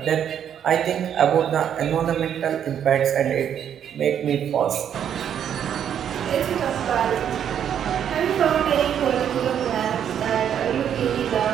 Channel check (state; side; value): quieter; left; 9.1 dB